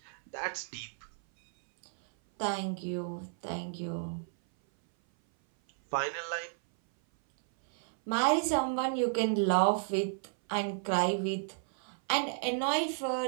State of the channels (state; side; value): silent; left; 56 dB below the other